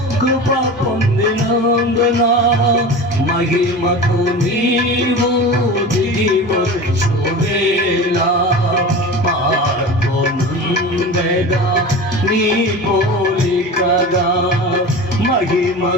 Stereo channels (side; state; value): both; normal; correlation 0.32